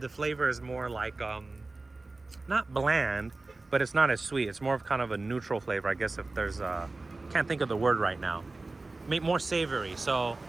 flavor is more like not bland, but it's not as sweet. It's more of kind of a neutral flavor, I guess, if there's can't think of the word right now. More savory. So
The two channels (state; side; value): quieter; left; 3.3 dB